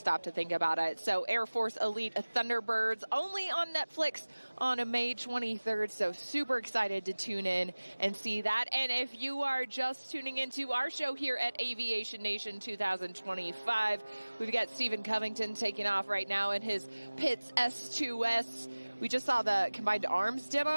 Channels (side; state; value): both; inverted; correlation -1.00